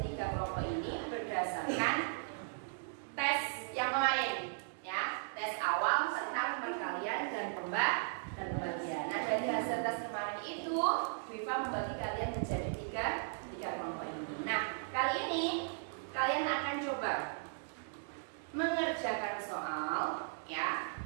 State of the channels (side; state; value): left; silent; digital silence